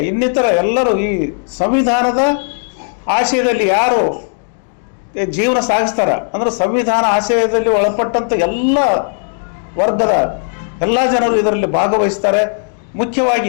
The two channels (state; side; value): silent; right; 69 dB below the other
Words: ಇನ್ನಿತರ ಎಲ್ಲರೂ ಈ ಸಂವಿಧಾನದ ಆಶಯದಲ್ಲಿ ಯಾರು ಜೀವನ ಸಾಗಿಸ್ತಾರ ಅಂದ್ರೆ ಸಂವಿಧಾನ ಆಶಯದಲ್ಲಿ ಒಳಪಟ್ಟಂಥ ಎಲ್ಲ ವರ್ಗದ ಎಲ್ಲ ಜನರು ಇದರಲ್ಲಿ ಭಾಗವಹಿಸ್ತಾರೆ.